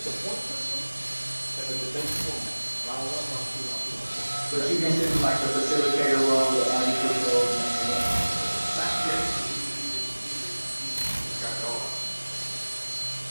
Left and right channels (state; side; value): inverted; both; correlation -1.00